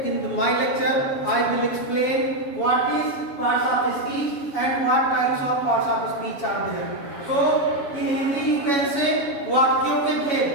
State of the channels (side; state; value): right; late; 7.2 ms